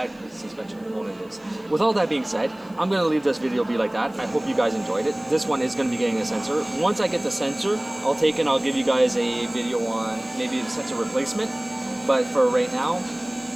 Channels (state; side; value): noise; left; hiss, 30 dB below the sound